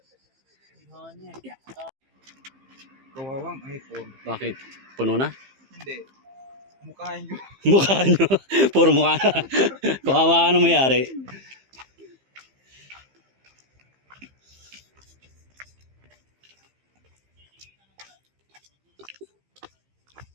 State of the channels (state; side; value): late; left; 15 ms